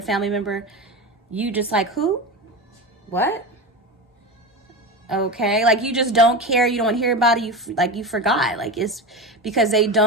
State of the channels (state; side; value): normal; both; correlation 0.23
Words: family member, you just like, who? What? Okay, like you just don't care, you don't hear about it, you forgot, like it's because they